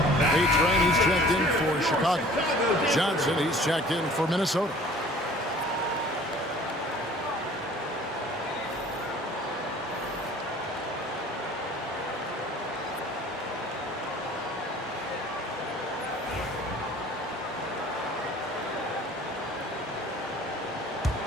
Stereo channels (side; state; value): both; normal; correlation 0.49